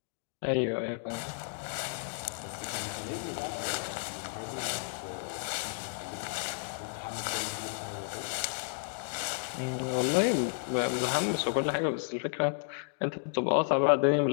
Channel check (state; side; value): silent; right; digital silence